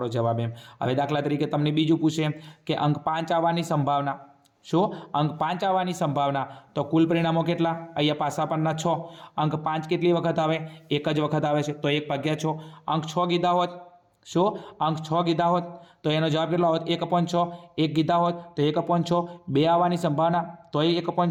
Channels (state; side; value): identical; both; correlation 1.00